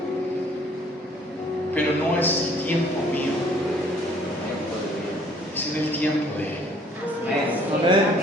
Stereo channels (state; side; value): normal; both; correlation 0.58